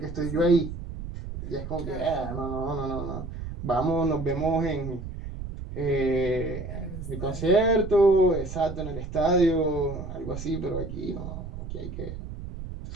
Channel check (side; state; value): right; noise; rumble, 9 dB below the sound